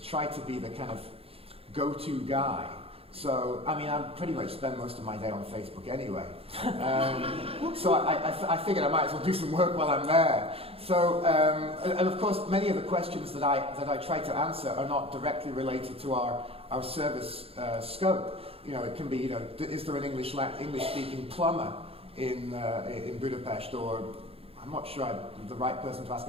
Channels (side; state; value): left; late; 0.28 ms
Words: try to be the kind of go-to guy. So, I mean, I pretty much spend most of my day on Facebook anyway. So I figured I might as well do some work while I'm there. So, and of course, many of the questions that I try to answer are not directly related to our service scope. You know, it can be, you know, is there an English-speaking plumber in Budapest, or I'm not sure I'm the right person to ask